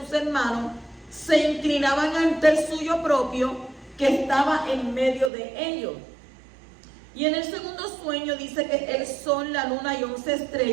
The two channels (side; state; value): left; drops out; at 5.3 s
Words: hermanos se inclinaban ante el suyo propio, que estaba en medio de ellos. Y en el segundo sueño dice que el sol, la luna y 11